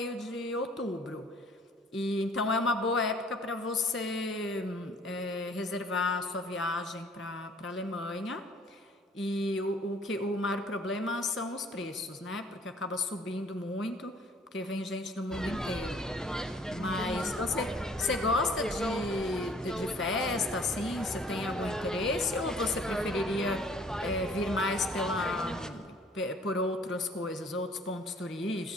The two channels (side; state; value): both; normal; correlation 0.55